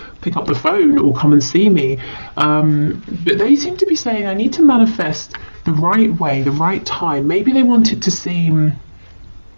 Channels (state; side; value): inverted; both; correlation -1.00